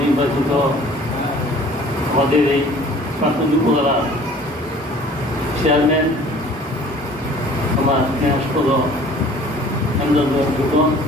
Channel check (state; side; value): normal; both; correlation 0.50